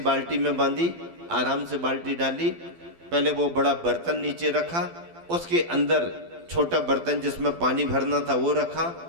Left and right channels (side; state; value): left; late; 12 ms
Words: में बांधी, आराम से बाल्टी डाली, पहले वो बड़ा बर्तन नीचे रखा, उसके अंदर छोटा बर्तन जिसमें पानी भरना था वो